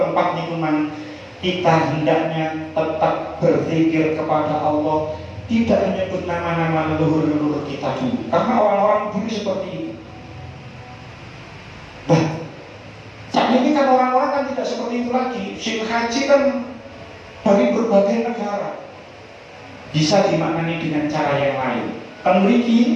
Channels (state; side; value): identical; both; correlation 1.00